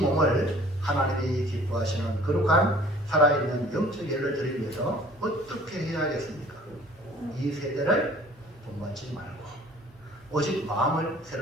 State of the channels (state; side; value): normal; both; correlation 0.52